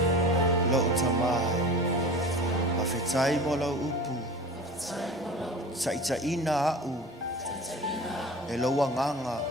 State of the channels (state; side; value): normal; both; correlation 0.37